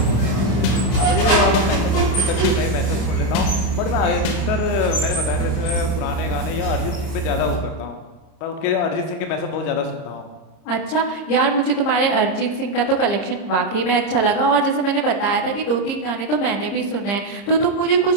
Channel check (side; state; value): right; late; 30 ms